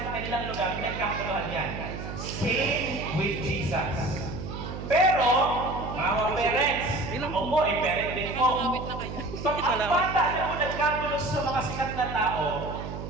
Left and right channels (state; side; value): noise; right; hum, 7 dB below the sound